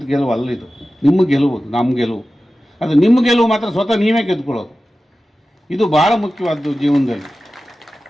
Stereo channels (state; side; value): normal; both; correlation 0.95